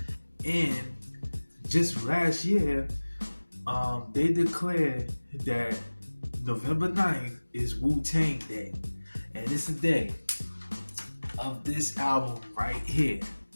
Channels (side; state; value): both; inverted; correlation -1.00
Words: And just last year, they declared that November 9th is Wu-Tang Day. And it's the day of this album right here.